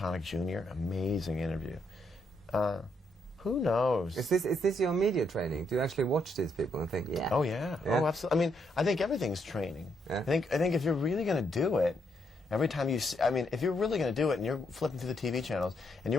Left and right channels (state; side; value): normal; both; correlation 0.76